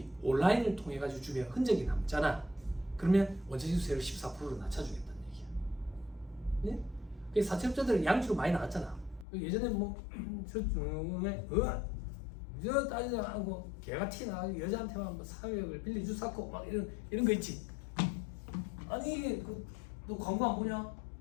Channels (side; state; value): right; drops out; at 9.2 s